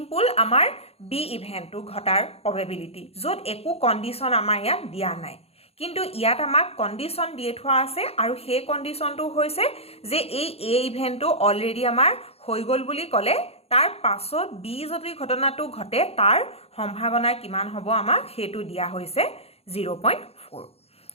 আমাৰ B ইভেন্টটো ঘটাৰ probability য'ত একো কণ্ডিশ্যন আমাৰ ইয়াত দিয়া নাই, কিন্তু ইয়াত আমাক কণ্ডিশ্যন দিয়ে থোৱা আছে আৰু সেই কণ্ডিশ্যনটো হৈছে যে এই A ইভেন্টটো অলৰেডি আমাৰ হৈ গ'ল বুলি ক'লে তাৰ পাছত B যদি ঘটনাটো ঘটে তাৰ সম্ভাৱনা কিমান হ'ব আমাক সেইটো দিয়া হৈছে 0.4।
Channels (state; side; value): late; right; 0.29 ms